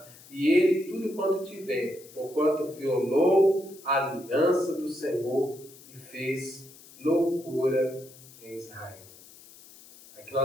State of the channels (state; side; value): noise; left; hiss, 21 dB below the sound